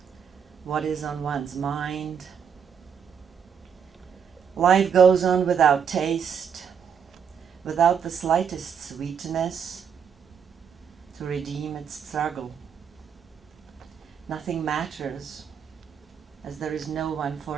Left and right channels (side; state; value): left; quieter; 7.4 dB